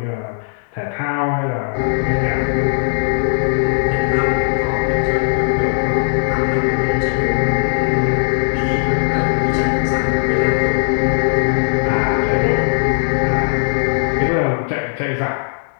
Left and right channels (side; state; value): right; silent; digital silence